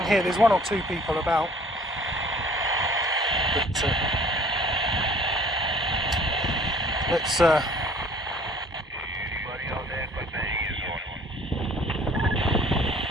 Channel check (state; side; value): normal; both; correlation 0.53